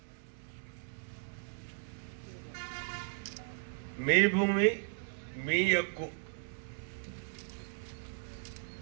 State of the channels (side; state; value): left; silent; 53 dB below the other